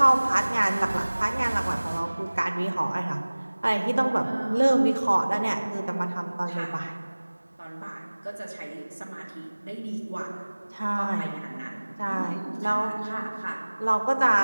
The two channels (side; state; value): both; inverted; correlation -1.00